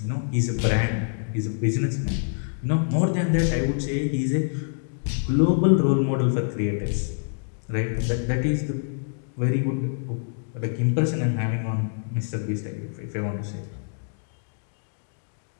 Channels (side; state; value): right; silent; digital silence